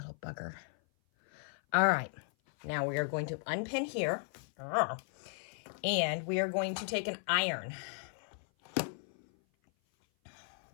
bugger. All right, now we are going to unpin here, and we are going to take an iron,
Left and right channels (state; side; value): silent; right; 54 dB below the other